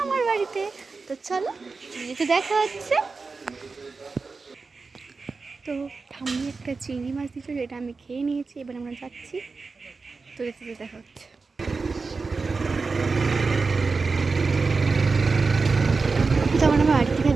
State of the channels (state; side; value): quieter; left; 4.3 dB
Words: বাড়িতে। তো চলো, যেতে দেখা হচ্ছে। তো ঠাম্মি একটা চিংড়ি মাছ দিচ্ছিল, যেটা আমি খেয়ে নিয়েছি। এবার আমরা যাচ্ছি, তো যেতে দেখা হচ্ছে। তখন আমরা বাড়ি থেকে